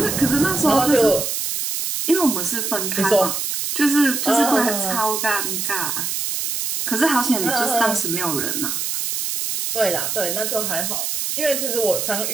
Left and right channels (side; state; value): right; noise; hiss, 2 dB below the sound